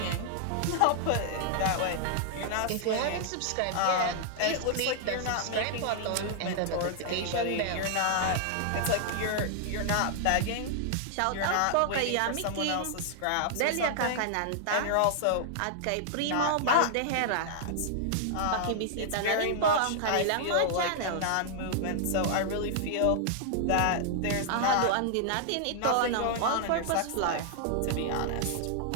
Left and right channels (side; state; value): both; different; correlation -0.01